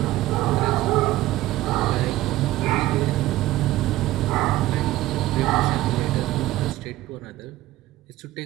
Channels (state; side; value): quieter; left; 16.2 dB